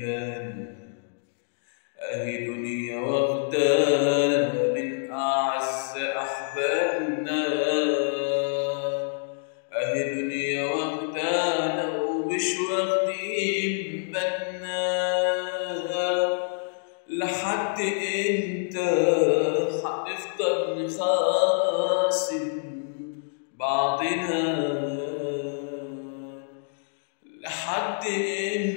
أهي دنيا واخدانا من أعز أحبابنا. أهي دنيا واخدانا ومش واخدين بالنا. لحد امتى هنفضل نخاصم بعضنا؟ لحد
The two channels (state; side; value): silent; right; digital silence